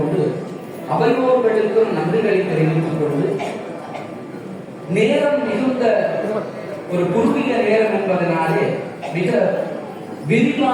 அவையோர்களுக்கும் நன்றிகளை தெரிவித்துக் கொண்டு நேரம் மிகுந்த ஒரு குறுகிய நேரம் என்பதனாலே மிக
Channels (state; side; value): identical; both; correlation 1.00